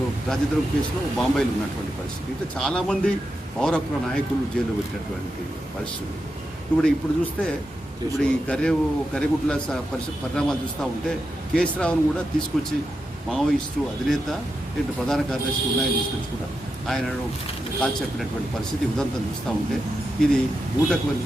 రాజద్రోహం కేసులో బాంబేలో ఉన్నటువంటి పరిస్థితి. ఇట్లా చాలామంది పౌర హక్కుల నాయకులు జైల్లో పెట్టినటువంటి పరిస్థితులు. ఇప్పుడు చూస్తే ఇప్పుడు ఈ కర్రెగుట్ల పరిణామాలు చూస్తూ ఉంటే కేసీరావును కూడా తీసుకొచ్చి మావోయిస్టు అధినేత ఇటు ప్రధాన కార్యదర్శి ఉన్నాయని తీసుకొచ్చి కూడా ఆయనను కాల్చి చెప్పినటువంటి పరిస్థితి ఉదంతం చూస్తూ ఉంటే ఇది ఊటకు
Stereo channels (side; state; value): both; normal; correlation 0.87